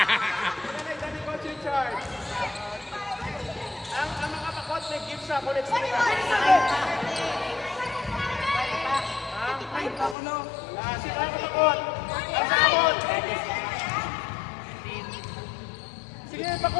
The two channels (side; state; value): right; drops out; at 10.2 s